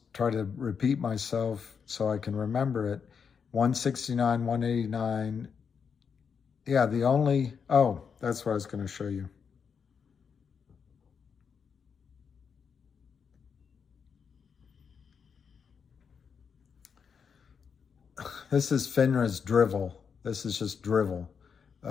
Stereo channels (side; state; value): right; quieter; 6.4 dB